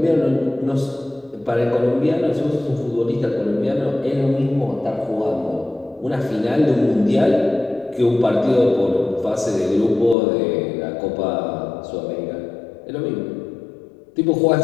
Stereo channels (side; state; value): right; drops out; at 10.2 s